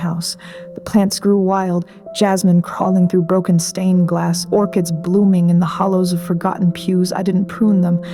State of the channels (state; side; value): identical; both; correlation 1.00